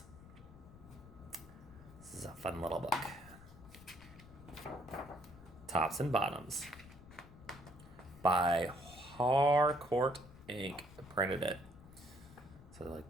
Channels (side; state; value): left; noise; rumble, 19 dB below the sound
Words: This is a fun little book. Tops and Bottoms by Harcourt Inc. Printed it. So